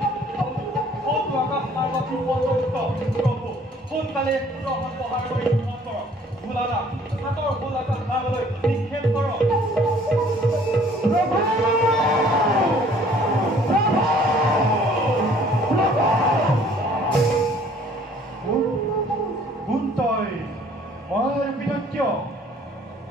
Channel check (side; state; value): both; normal; correlation 0.57